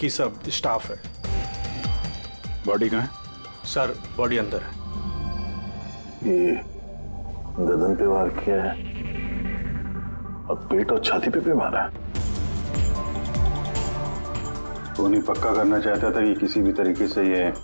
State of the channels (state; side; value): inverted; both; correlation -1.00